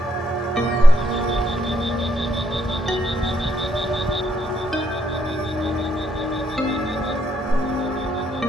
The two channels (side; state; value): both; normal; correlation 0.73